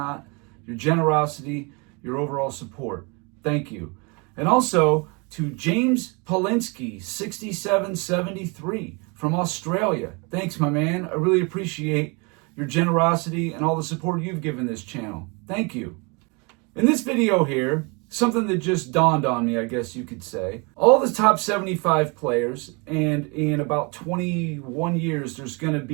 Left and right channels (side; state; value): left; quieter; 30.7 dB